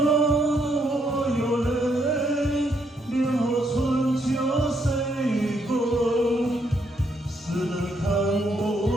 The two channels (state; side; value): normal; both; correlation 0.74